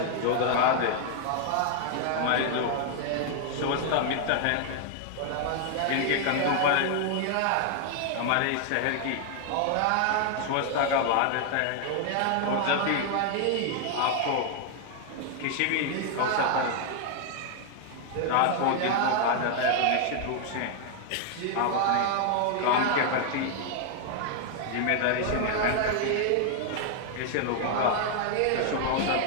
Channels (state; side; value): different; both; correlation 0.00